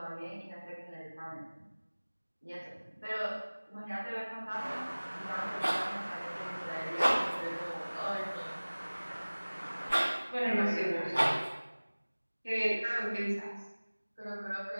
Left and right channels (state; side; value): inverted; both; correlation -1.00